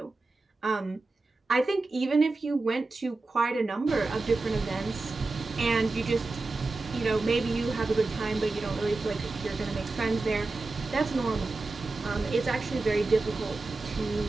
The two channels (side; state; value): left; quieter; 3.4 dB